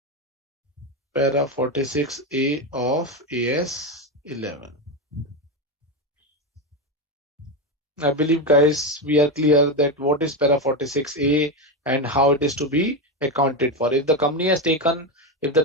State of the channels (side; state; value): both; normal; correlation 0.12